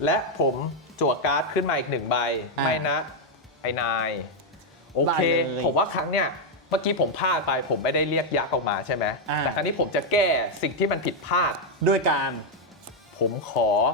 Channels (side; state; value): both; normal; correlation 0.00